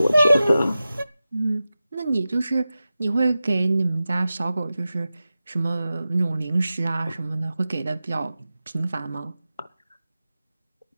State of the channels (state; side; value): inverted; both; correlation -0.94